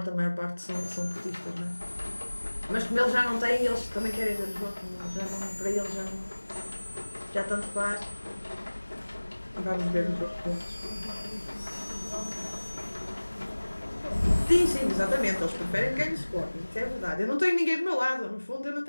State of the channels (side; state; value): both; inverted; correlation -1.00